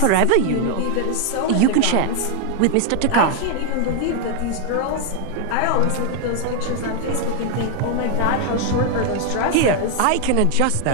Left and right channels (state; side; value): different; both; correlation 0.01